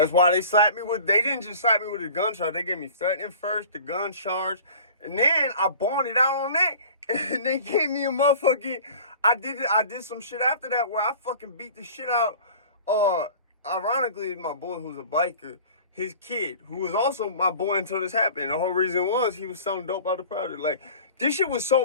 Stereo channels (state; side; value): inverted; both; correlation -0.43